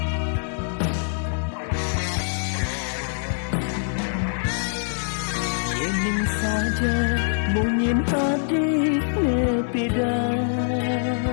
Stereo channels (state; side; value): silent; right; digital silence